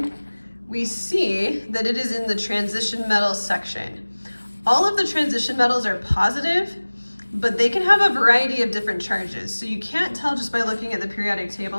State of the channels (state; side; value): inverted; both; correlation -1.00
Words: we see that it is in the transition metals section. All of the transition metals are positive, but they can have a variety of different charges. So you can't tell just by looking at the periodic